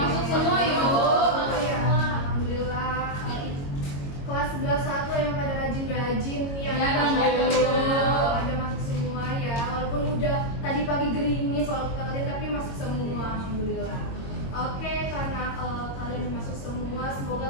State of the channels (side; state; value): right; late; 22 ms